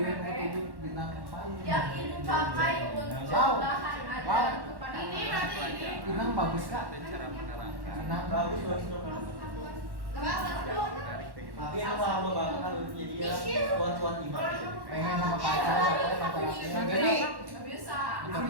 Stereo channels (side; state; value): left; late; 1.1 ms